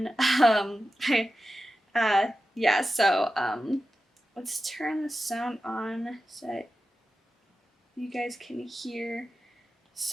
Yeah, so let's turn the sound on so you guys can hear.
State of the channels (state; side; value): normal; both; correlation 0.92